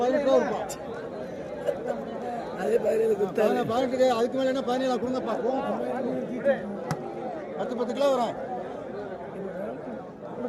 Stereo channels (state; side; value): identical; both; correlation 1.00